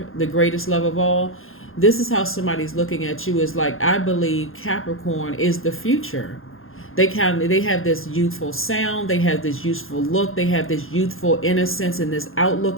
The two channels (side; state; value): right; late; 0.60 ms